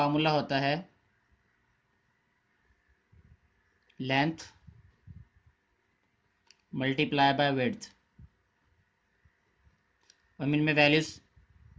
होता है लेंथ मल्टीप्लाई बाय विड्थ। हम इनमें वैल्यूज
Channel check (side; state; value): both; identical; correlation 1.00